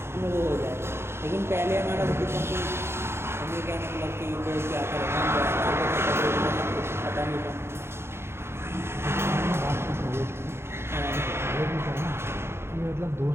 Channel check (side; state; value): left; late; 0.12 ms